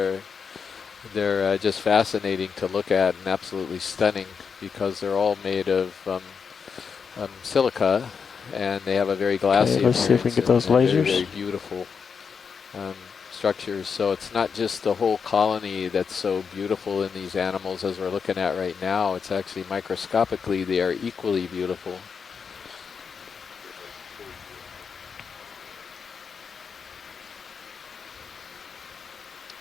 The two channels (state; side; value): quieter; right; 6.0 dB